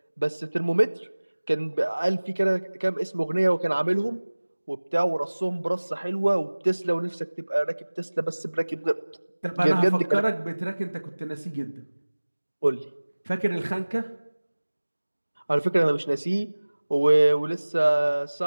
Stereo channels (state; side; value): inverted; both; correlation -1.00